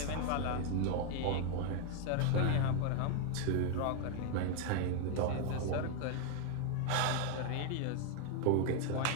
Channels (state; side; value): different; both; correlation 0.01